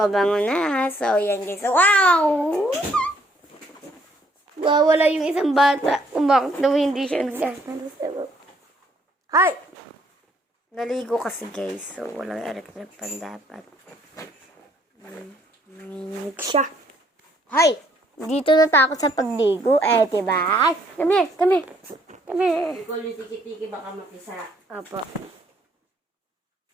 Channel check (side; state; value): both; normal; correlation 0.67